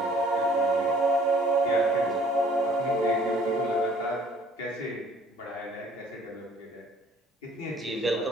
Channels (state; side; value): normal; both; correlation 0.57